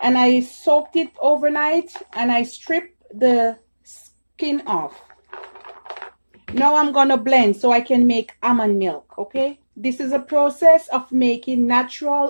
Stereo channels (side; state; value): both; inverted; correlation -1.00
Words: I soaked it overnight, and I stripped the skin off. Now I'm gonna blend so I can make almond milk. Okay, this is a process of making